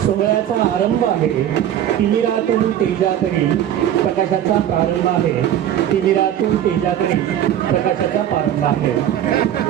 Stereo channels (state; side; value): quieter; left; 10.9 dB